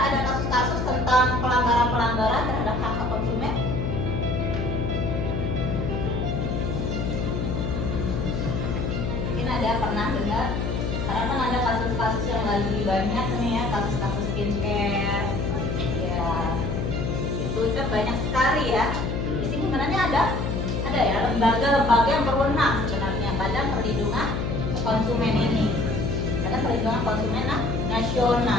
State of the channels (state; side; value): noise; left; hum, 1 dB below the sound